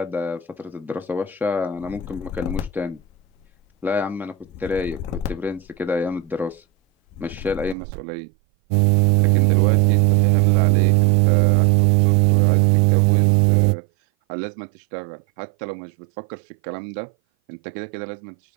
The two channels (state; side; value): drops out; left; at 7.8 s